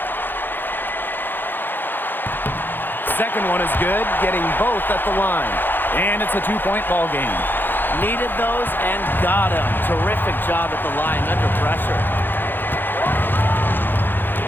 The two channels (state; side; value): late; right; 0.095 ms